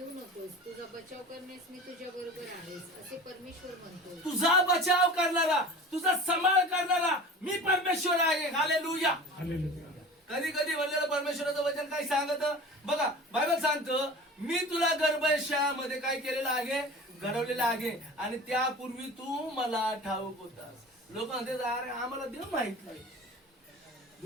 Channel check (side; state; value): both; normal; correlation 0.38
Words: नकोस. तुझा बचाव करण्यास मी तुझ्या बरोबर आहेस असे परमेश्वर म्हणतो. तुझा बचाव करणारा, तुझा सांभाळ करणारा मी परमेश्वर आहे. हालेलुया. कधी कधी म्हणलेलं परमेश्वराचं वचन काय सांगत बघा. बायबल सांगतं मी तुला गर्भाशयामध्ये काय केलेलं आहे, घडवलेलं आहे. आणि त्यापूर्वी तू मला ठाऊक होतास. लोक म्हणते अरे आम्हाला देव माहित नाही.